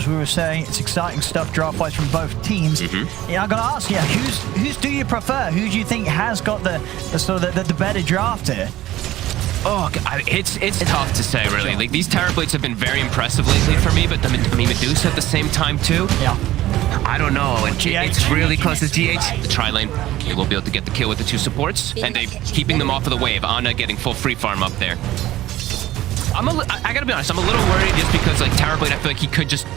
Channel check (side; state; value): left; quieter; 15.2 dB